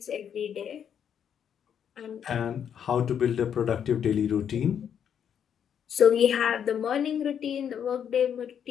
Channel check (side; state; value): right; quieter; 8.4 dB